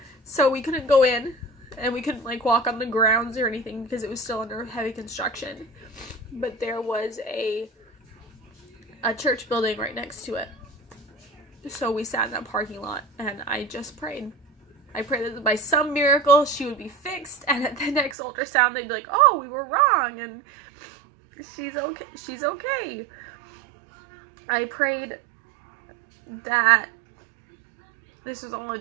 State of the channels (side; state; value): left; drops out; at 18.2 s